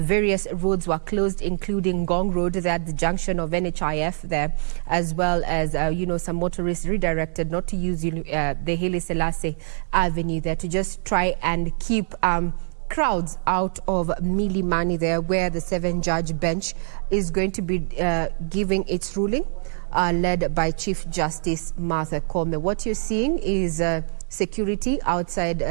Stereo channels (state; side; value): silent; left; digital silence